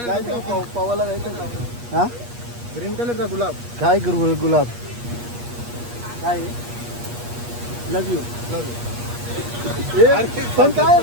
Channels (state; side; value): late; left; 8.4 ms